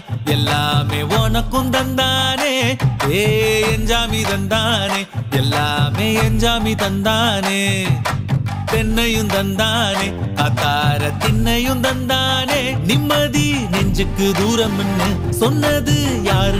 எல்லாமே உனக்கும் தந்தானே ஏ எஞ்சாமி தந்தானே எல்லாமே எஞ்சாமி தந்தானே தென்னையும் தந்தானே அத்தார திண்ணையும் தந்தானே நிம்மதி நெஞ்சுக்கு தூரம்னு சொன்னது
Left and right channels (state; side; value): identical; both; correlation 1.00